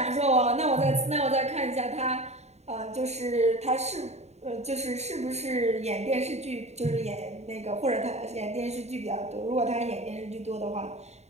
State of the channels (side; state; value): left; late; 0.32 ms